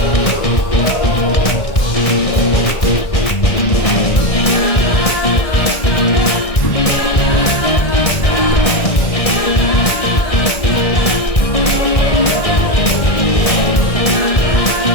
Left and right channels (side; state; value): right; late; 1.6 ms